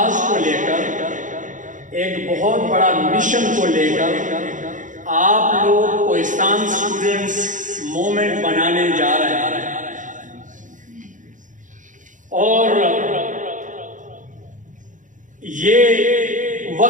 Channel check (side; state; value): left; late; 0.37 ms